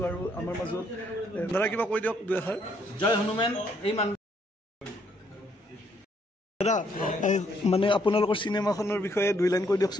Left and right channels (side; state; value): both; normal; correlation 0.70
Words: আৰু আমাৰ মাজত দাদা কিবা কৈ দিয়ক দুই এষাৰ জয় হনুমান এই মান দাদা মানে আপোনালোকৰ চিনেমাখনৰ বিষয়ে দুই লাইন কৈ